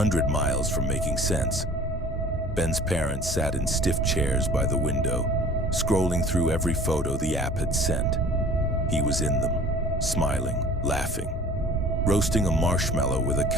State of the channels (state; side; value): normal; both; correlation 0.47